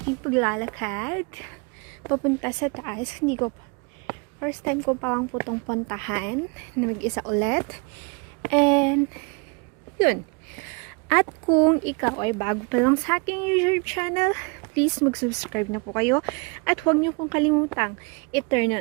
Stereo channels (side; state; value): left; quieter; 32.3 dB